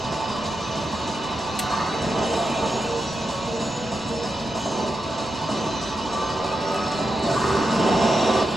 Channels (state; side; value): noise; right; rumble, 21 dB below the sound